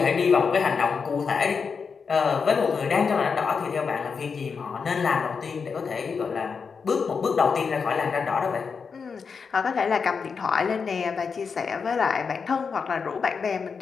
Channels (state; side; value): quieter; right; 5.6 dB